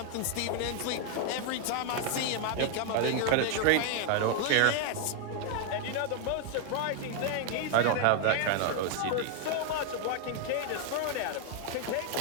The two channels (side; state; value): both; different; correlation 0.00